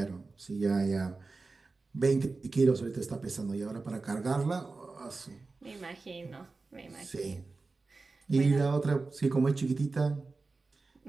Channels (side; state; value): left; quieter; 3.8 dB